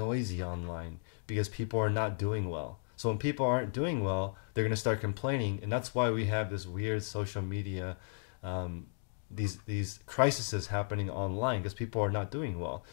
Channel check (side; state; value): right; silent; digital silence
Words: online because people are not doing well. So when people aren't doing well, they're going to start complaining. And that's why we have this weird social media, these crises happening online because people are not doing well.